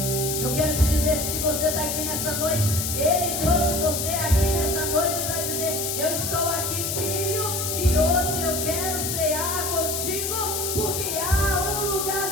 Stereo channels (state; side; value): noise; left; hiss, 1 dB below the sound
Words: Eu quero te dizer que se você está aqui nessa noite, Ele trouxe você aqui nessa noite para dizer, eu estou aqui, filho, e hoje eu quero cear contigo, porque há um lugar